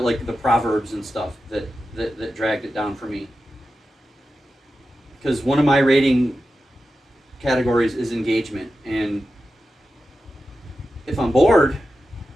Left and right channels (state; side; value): normal; both; correlation 0.91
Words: proverbs and stuff that dragged it down for me. Because one of my rating categories is engagement, and if I'm bored,